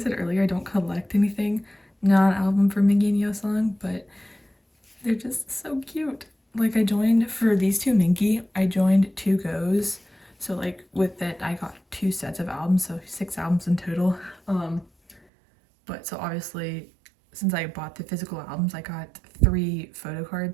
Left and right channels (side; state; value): left; drops out; at 15.2 s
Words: earlier, I don't collect anything non-album for Mingi and Yeosang, but they're just so cute. Like, I joined, for these 2 Mingi, I joined 2 goes. So like with that, I got 2 sets of albums, so 6 albums in total. But so obviously, since I bought the physical albums, I got 3